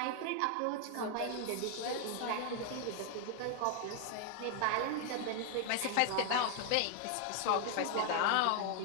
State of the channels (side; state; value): both; different; correlation 0.00